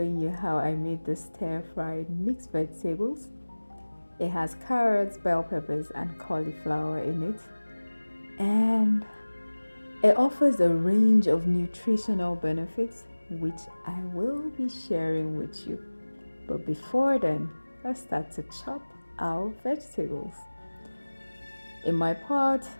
you how I made the stir-fried mixed vegetables. It has carrots, bell peppers, and cauliflower in it. And it offers a range of nutritional benefits, which I will be sharing with you. But before then, let's start to chop our vegetables. In my pot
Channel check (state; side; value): inverted; both; correlation -1.00